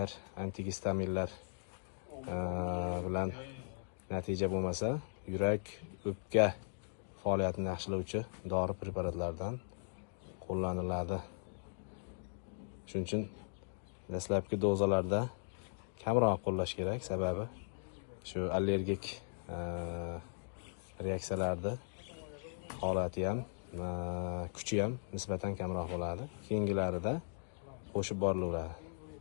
antigistaminlar bilan natija bo'lmasa, yurak o'pka faoliyatini yaxshilovchi dori preparatlardan qo'llaniladi. Shuning uchun dastlabki dozalarda kamroq qo'llash kerak, sababi shu allergik reaksiyalarni holati ham, kuchi ham nisbatan kamroq bo'ladi. Keyingilarida qo'shib borilaveradi.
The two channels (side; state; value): right; silent; digital silence